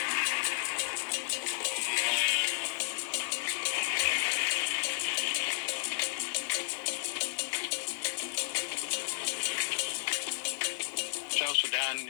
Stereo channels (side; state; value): right; silent; digital silence